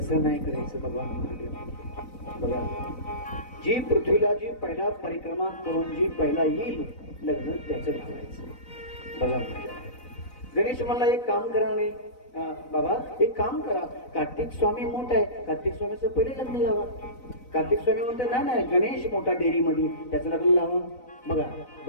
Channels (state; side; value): late; right; 4.0 ms